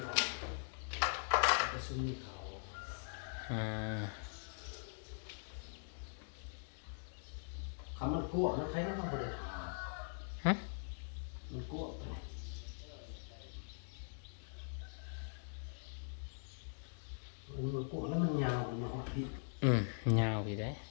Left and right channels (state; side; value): silent; right; digital silence